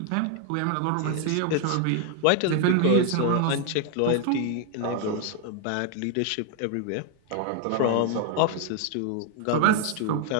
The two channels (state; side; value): different; both; correlation 0.01